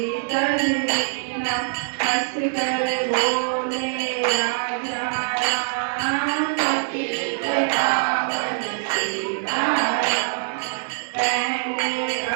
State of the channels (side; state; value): left; silent; 63 dB below the other